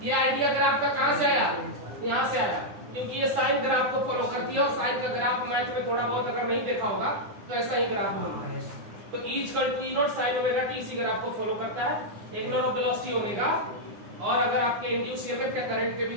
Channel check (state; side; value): late; left; 9.7 ms